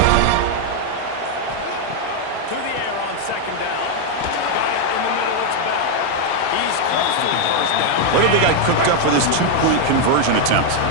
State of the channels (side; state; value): both; different; correlation 0.01